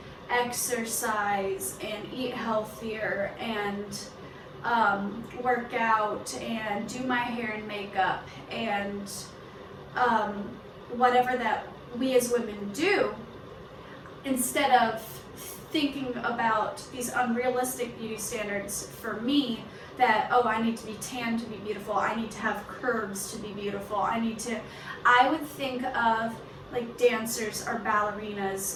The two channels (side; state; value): both; identical; correlation 1.00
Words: exercise and eat healthier and work out and do my hair and makeup and whatever that we as women do, instead of thinking about these unrealistic beauty standards for me, that, oh, I need to be tan to be beautiful, I need to have curves to be beautiful, I would think of like dancers or